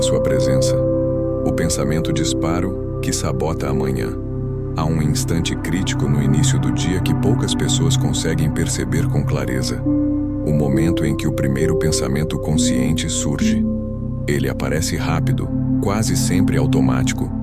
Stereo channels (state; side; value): identical; both; correlation 1.00